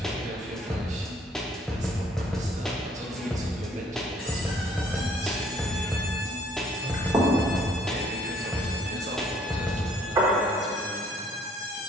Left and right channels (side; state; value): both; normal; correlation 0.61